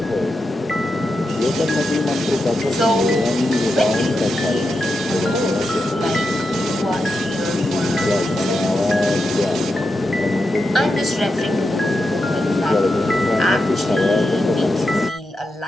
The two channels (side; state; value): both; normal; correlation 0.87